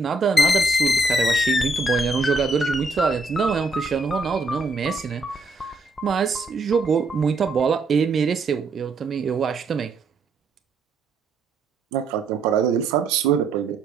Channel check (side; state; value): left; quieter; 3.1 dB